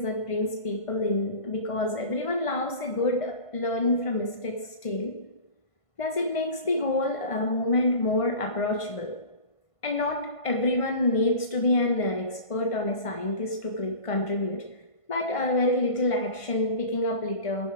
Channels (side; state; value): right; late; 1.5 ms